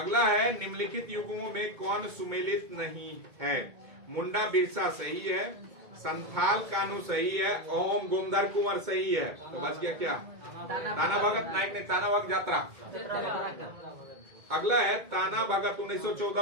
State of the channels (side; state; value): left; late; 2.0 ms